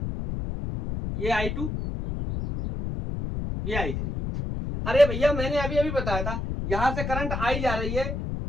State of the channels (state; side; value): noise; left; rumble, 3 dB below the sound